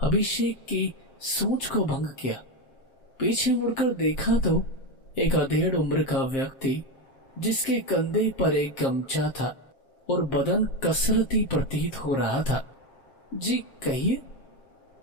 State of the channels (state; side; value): late; right; 7.5 ms